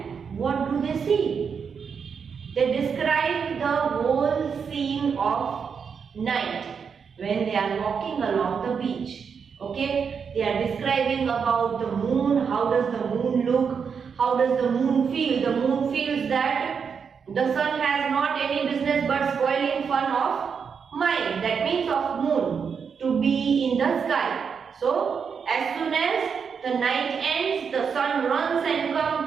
what do they see? They describe the whole scene of night when they are walking along the beach. Okay, they are describing about the moon. How does the moon look? How does the moon feel? The moon feels that the sun has not any business but spoiling fun of mine. That means of moon to be in the sky. So as soon as the night ends, the sun runs and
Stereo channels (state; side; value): quieter; left; 6.3 dB